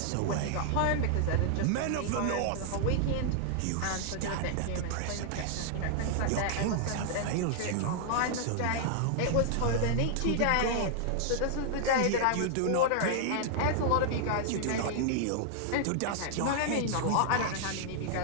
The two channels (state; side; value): different; both; correlation -0.01